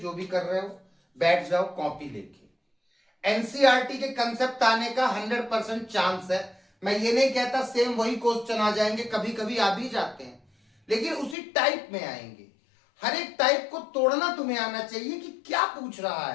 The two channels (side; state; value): right; drops out; at 11.4 s